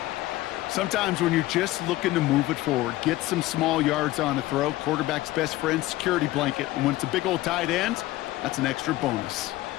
Sometimes when you're just looking to move it forward, get some small yards on a throw, quarterback's best friend, security blanket. And when it's a big old tight end, that's an extra bonus.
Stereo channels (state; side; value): quieter; right; 17.0 dB